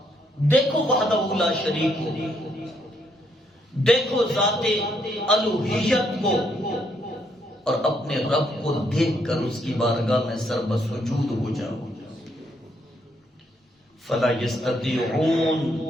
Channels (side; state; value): both; normal; correlation 0.73